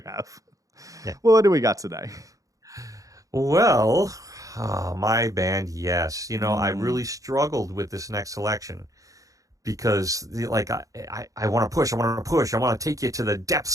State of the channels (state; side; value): late; left; 0.16 ms